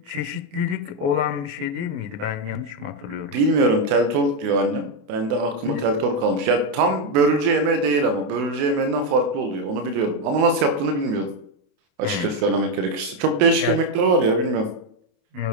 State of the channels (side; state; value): left; late; 28 ms